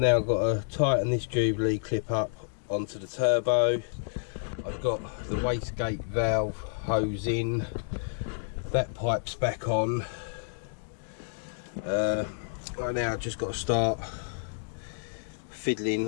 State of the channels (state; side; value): silent; right; digital silence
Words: got to tighten this Jubilee clip up onto the turbo. I've got the wastegate valve hose in, that pipe's back on. Right now I've just got to start